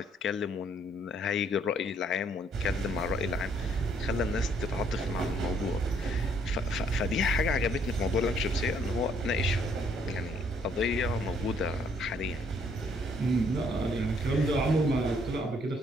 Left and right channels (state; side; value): normal; both; correlation 0.66